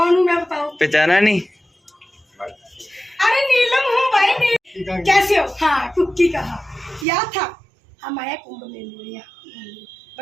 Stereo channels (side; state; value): left; drops out; at 7.1 s